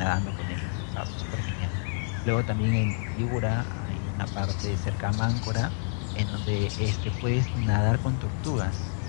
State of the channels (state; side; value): silent; right; 59 dB below the other